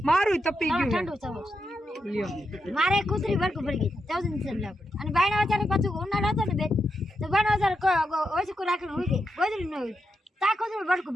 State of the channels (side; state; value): both; normal; correlation 0.85